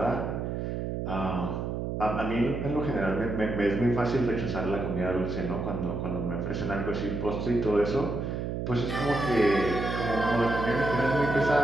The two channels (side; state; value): right; noise; hum, 3 dB below the sound